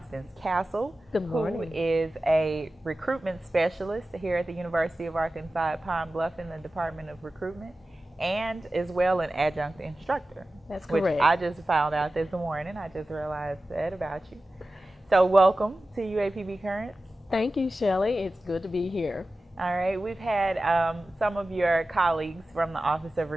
Castle, Good morning. who is a recruitment specialist here at the University of Arkansas at Pine Bluff in the Department of Recruitment, and as well an adjunct instructor. That's correct. Which I just found out this morning. I just realized that about you. So welcome to UAPB Currents. Thank you, Shelly. It's good to be here. All right, we've had some of your colleagues from the Office of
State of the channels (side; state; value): both; normal; correlation 0.95